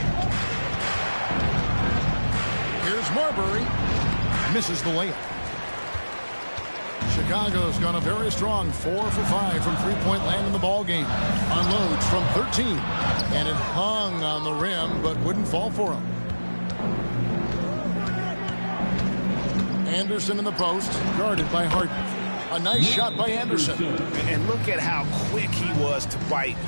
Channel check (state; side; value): inverted; both; correlation -1.00